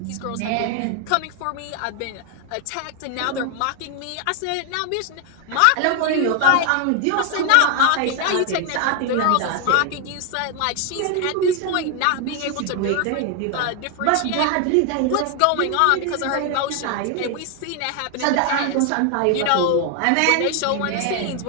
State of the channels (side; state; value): both; different; correlation 0.01